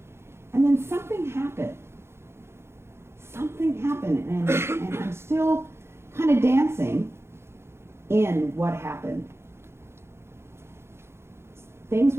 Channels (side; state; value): left; late; 0.12 ms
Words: And then something happened. And I'm still kind of dancing in what happened. Things